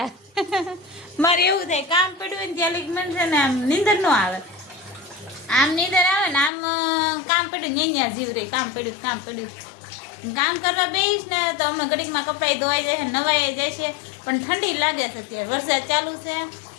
મારે એવું થાય કામ પડ્યું હોય ને ત્યાં લગી મને છે ને આમ નીંદર ન આવે આમ નીંદર આવે ને આમ કામ પડ્યું અહીંયા જીવ રહી કામ પડ્યું કામ કરવા બેસીશ ને તો અમે ઘડીકમાં કપડાં ધોવાઈ જાય છે નવાઈ જાય છે પણ ઠંડી લાગે છે અત્યારે વરસાદ ચાલુ છે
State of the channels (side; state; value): right; drops out; at 6.5 s